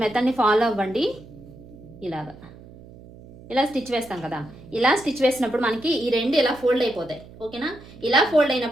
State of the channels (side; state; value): right; noise; hum, 20 dB below the sound